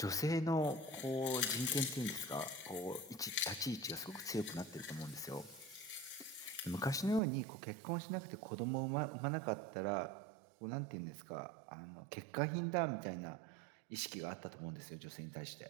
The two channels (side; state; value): left; drops out; at 7.2 s